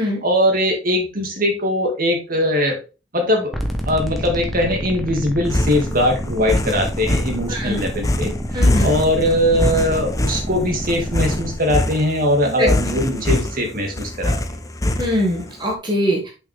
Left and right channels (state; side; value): normal; both; correlation 0.37